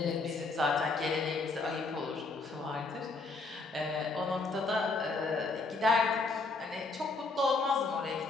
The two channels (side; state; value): right; quieter; 3.7 dB